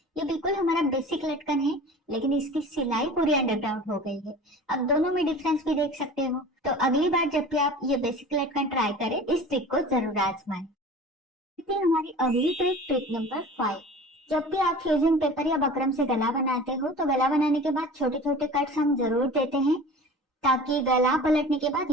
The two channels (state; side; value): normal; both; correlation 0.39